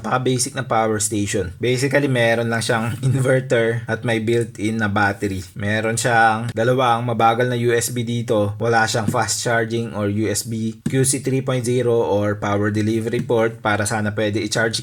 na power station. Basically, meron lang siyang inverter at may built-in na battery. Meron siyang dalawang mabagal na USB dito. Wala siyang fast charging or USB QC 3.0 or power delivery port para sana pwede i-charge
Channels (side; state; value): both; identical; correlation 1.00